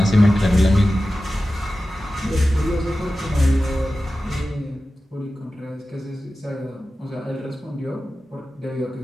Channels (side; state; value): both; normal; correlation 0.94